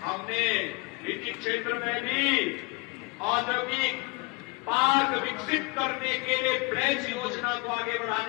हमने निजी क्षेत्र में भी औद्योगिक पार्क विकसित करने के लिए प्लेस योजना को आगे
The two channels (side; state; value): right; quieter; 27.0 dB